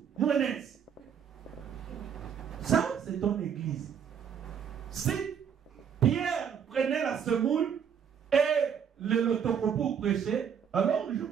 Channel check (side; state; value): left; quieter; 7.7 dB